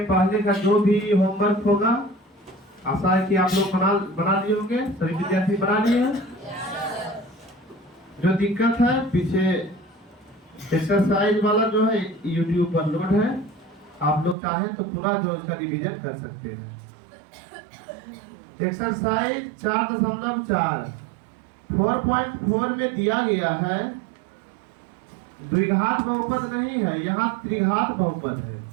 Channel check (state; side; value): drops out; left; at 14.4 s